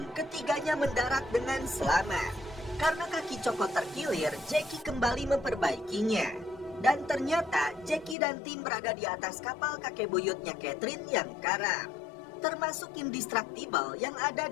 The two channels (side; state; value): right; drops out; at 8.2 s